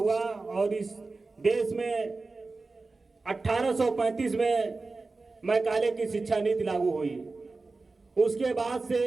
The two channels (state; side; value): quieter; left; 3.7 dB